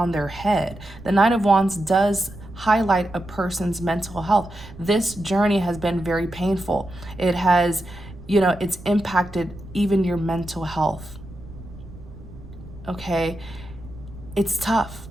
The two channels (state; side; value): noise; right; rumble, 17 dB below the sound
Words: their head. The Nine of Wands does highlight a person's mental health. This journey has been very painful. It has, it's impacted even your mental health. Okay, it's tough,